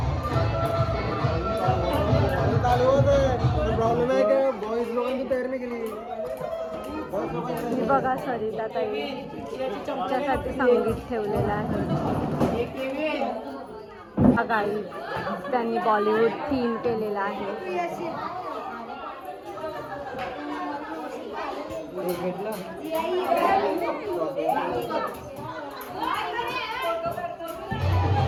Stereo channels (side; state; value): both; identical; correlation 1.00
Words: प्रॉब्लेम आहे का बॉयज लोकांची तयारी केली. ही बघा सरिताताई तिच्यासाठी संगीत ठेवलेलं आहे. गाई त्यांनी बॉलिवूड थीम केलेला आहे.